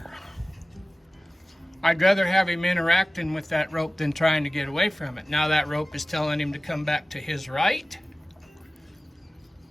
I'd rather have him interacting with that rope than trying to get away from it. Now that rope is telling him to come back to his right.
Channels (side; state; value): both; normal; correlation 0.97